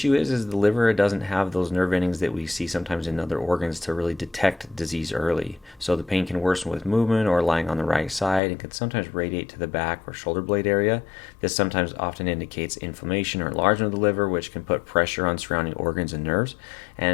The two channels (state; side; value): drops out; right; at 8.4 s